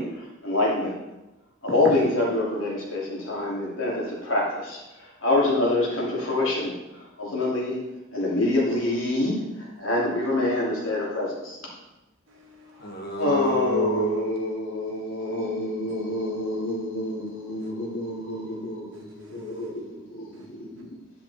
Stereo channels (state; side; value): normal; both; correlation 0.22